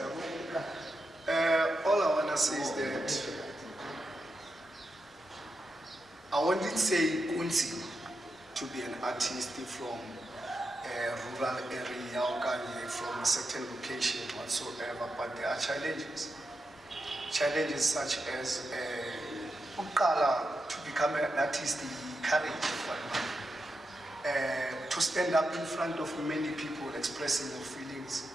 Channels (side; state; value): both; normal; correlation 0.87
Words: All I wanna say is that I wanted say Kunzi to be an artist from a rural area or from a certain location whatsoever, but there are challenges. Challenges such as to become an artist, courage, to stand up in front of many people expressing your feelings,